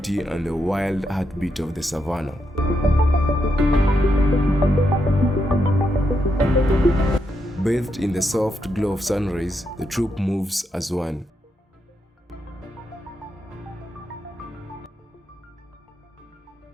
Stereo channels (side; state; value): both; normal; correlation 0.82